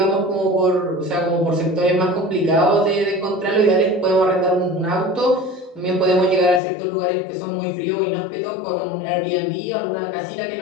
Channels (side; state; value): right; drops out; at 6.6 s